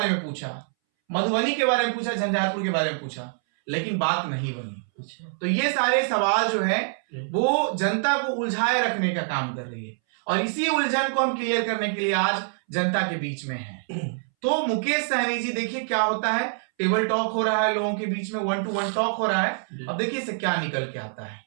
में पूछा, मधुबनी के बारे में पूछा, झंझारपुर के बारे में पूछा, लेकिन बात नहीं बनी। अच्छा तो ये सारे सवाल जो है जी। वो जनता को उलझाए रखने का काम कर रही है और इसी उलझन को हम क्लियर करने के लिए आज जनता के बीच में है। तो मुकेश सहनी जी, देखिए क्या होता है, टेबल टॉक हो रहा है लोगों के बीच में, 1-to-1 टॉक हो रहा है। जी। अब देखिए इससे क्या निकल के आता है।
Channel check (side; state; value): left; silent; 61 dB below the other